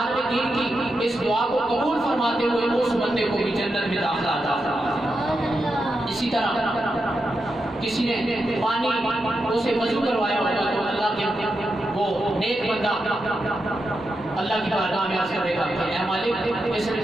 دین کی اس دعا کو قبول فرماتے ہوئے اس بندے کو بھی جنت میں داخلہ عطا فرما دے۔ اسی طرح کسی نے پانی اسے وضو کروایا ہوگا تو اللہ کے وہ نیک بندہ اللہ کی بارگاہ میں عرض کرے گا کہ اے مالک اس نے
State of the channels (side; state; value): both; normal; correlation 0.87